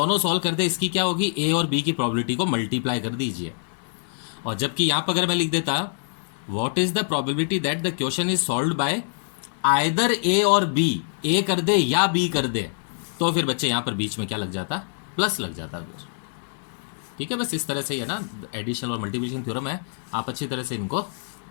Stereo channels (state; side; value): silent; right; digital silence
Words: सॉल्व कर दे, इसकी क्या होगी, ए और बी की प्रोबेबिलिटी को मल्टीप्लाई कर दीजिए। और जबकि यहाँ पर अगर मैं लिख देता what is the probability that the question is solved by either A or B, ए कर दे या बी कर दे, तो फिर बच्चे यहाँ पर बीच में क्या लग जाता, प्लस लग जाता फिर। ठीक है, बस इस तरह से ही है ना, एडिशन और मल्टीप्लिकेशन थ्योरम है, आप अच्छी तरह से इनको